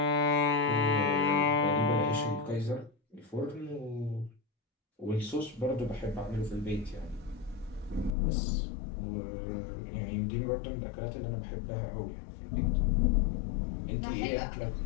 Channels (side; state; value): right; drops out; at 8.1 s